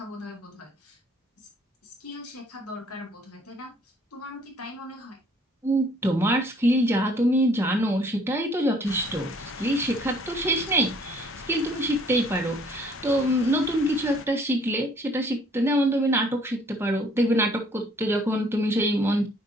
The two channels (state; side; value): normal; both; correlation 0.59